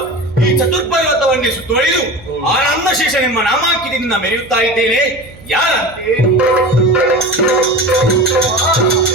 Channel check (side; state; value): right; noise; hum, 21 dB below the sound